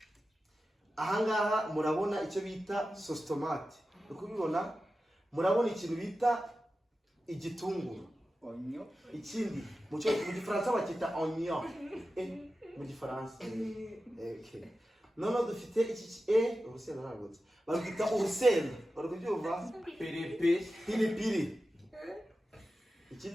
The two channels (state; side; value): normal; both; correlation 0.93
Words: Ahangaha murabona icyo bita sauce tomate. Ukubibona murabona ikintu bita igitunguru. Onyo. Ikindi mu gifaransa bakita oignon. Mu gifaransa. Okay. Nono dufite iki urusenda ntabwo. Bagita urusenda. Barakubyumva? Pilipili.